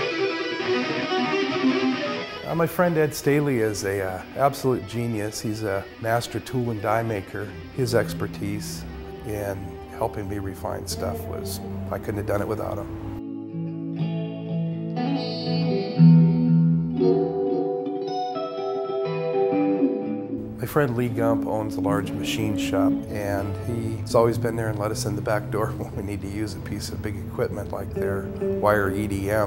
My friend Ed Staley is an absolute genius. He's a master tool and die maker. His expertise in helping me refine stuff was, I couldn't have done it without him. My friend Lee Gump owns a large machine shop, and he's always been there and let us in the back door when we need to use a piece of big equipment like their wire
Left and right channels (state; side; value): identical; both; correlation 1.00